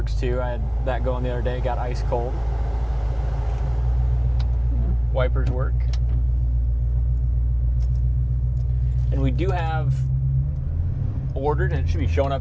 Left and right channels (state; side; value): identical; both; correlation 1.00